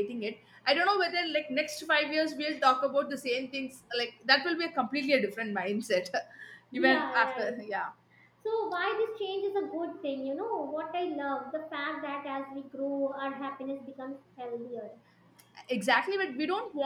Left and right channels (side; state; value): both; identical; correlation 1.00